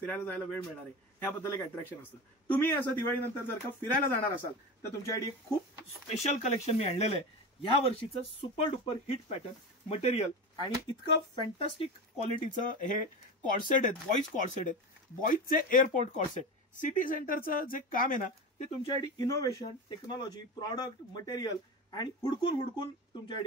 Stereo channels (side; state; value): both; normal; correlation 0.24